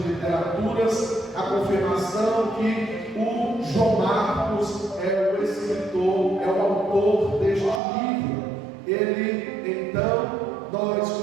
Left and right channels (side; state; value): left; drops out; at 7.8 s